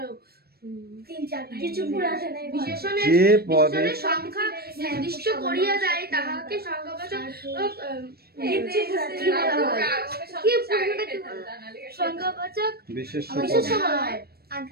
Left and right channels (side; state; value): left; late; 0.46 ms